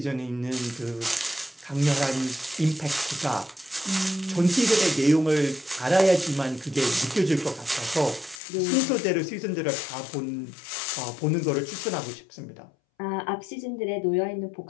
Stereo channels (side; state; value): right; drops out; at 8.4 s